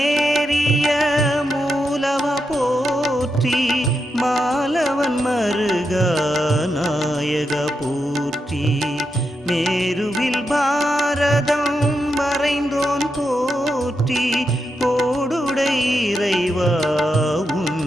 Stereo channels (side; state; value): both; normal; correlation 0.85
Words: மூலவ போற்றி மாலவன் மருகா நாயக போற்றி மேருவில் பாரதம் மறைந்தோன் போற்றி கோடுடை இறைவா உன்